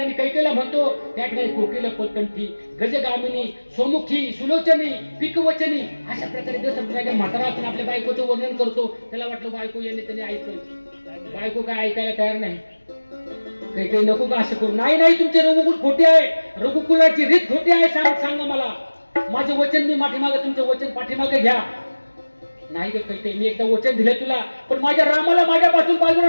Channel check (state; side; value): inverted; both; correlation -1.00